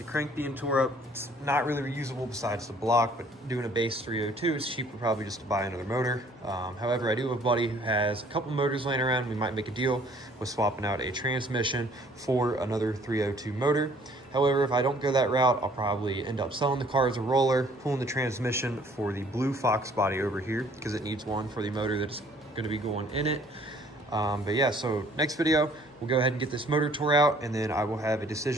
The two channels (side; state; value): both; normal; correlation 0.58